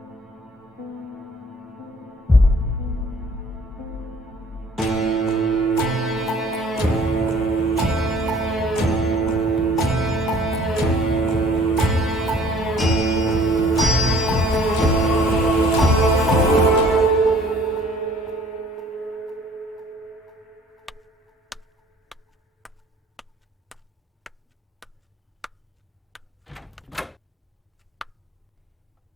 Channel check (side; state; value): both; normal; correlation 0.54